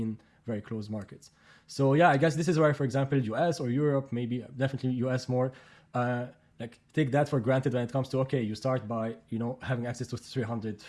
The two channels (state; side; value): identical; both; correlation 1.00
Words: very close markets. So yeah, I guess this is where, for example, US or Europe, maybe definitely US more, like take that for granted when it comes to, okay, you start by having access to